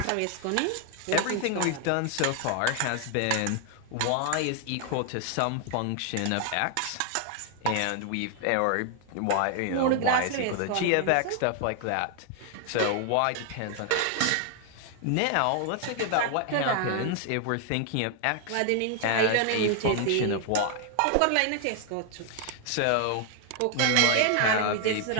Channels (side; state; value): both; different; correlation 0.00